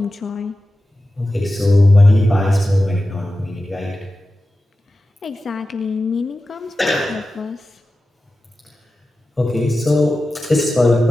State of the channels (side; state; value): both; normal; correlation 0.93